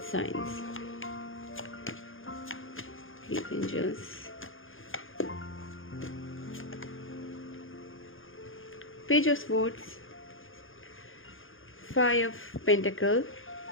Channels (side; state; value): right; late; 0.59 ms